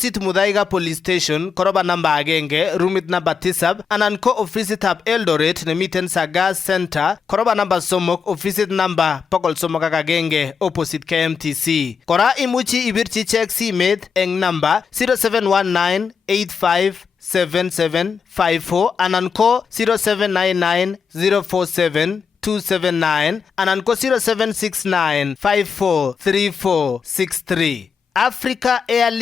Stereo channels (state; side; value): quieter; right; 6.0 dB